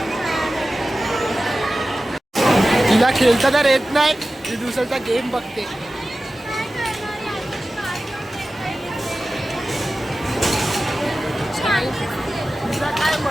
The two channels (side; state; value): both; normal; correlation 0.95